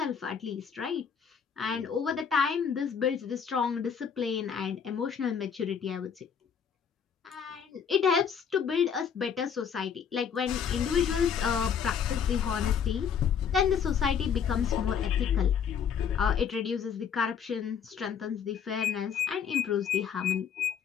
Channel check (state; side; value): quieter; right; 7.3 dB